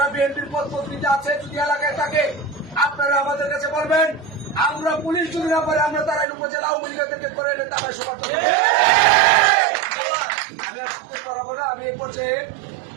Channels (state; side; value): drops out; left; at 6.2 s